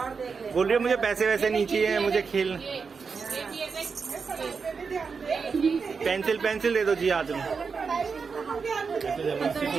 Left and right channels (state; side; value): quieter; left; 5.3 dB